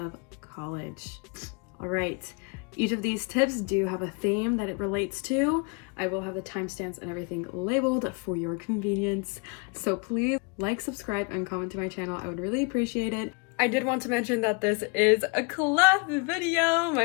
college. Alright, each of these tips do have a theme that it relates to. I will have the timestamps and everything labeled for your convenience. So please like, subscribe, and comment to my channel. I would really appreciate it. I did want to mention that this is a collab video,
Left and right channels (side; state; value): right; quieter; 31.7 dB